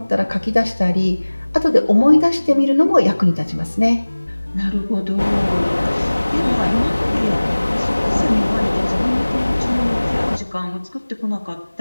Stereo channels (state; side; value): inverted; both; correlation -1.00